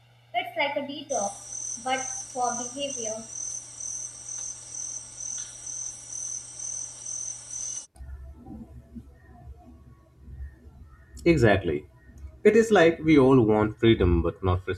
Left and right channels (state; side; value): identical; both; correlation 1.00